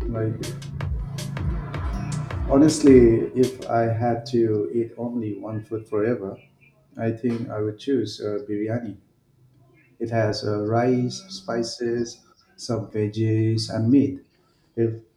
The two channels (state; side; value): identical; both; correlation 1.00